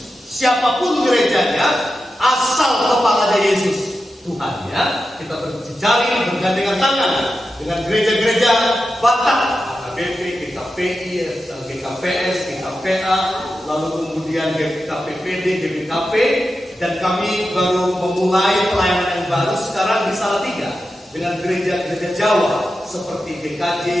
Siapapun gerejanya, asal kepalanya Yesus Tuhan, ya. Kita berjejaring, bergandengan tangan dengan gereja-gereja Batak, AKBP, GKPI, GKPS, GKPA, lalu kemudian GKPPD, GBKP, dan kami baru memulai pelayanan yang baru sekarang di Salatiga dengan gereja-gereja Jawa seperti GKJ,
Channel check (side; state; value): both; normal; correlation 0.91